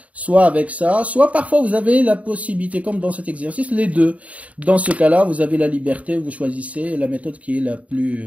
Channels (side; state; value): left; late; 0.067 ms